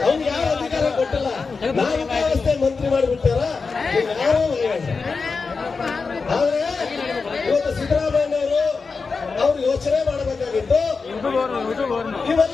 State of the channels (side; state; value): right; quieter; 4.6 dB